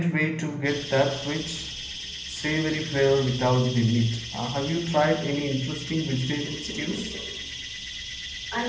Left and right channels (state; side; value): identical; both; correlation 1.00